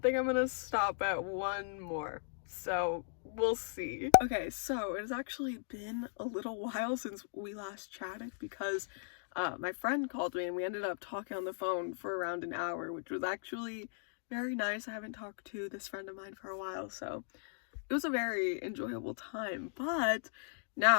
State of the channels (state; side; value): silent; right; digital silence